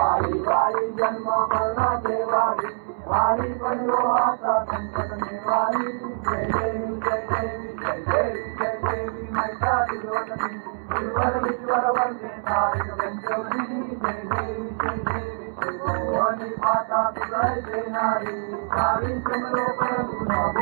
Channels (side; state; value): left; silent; digital silence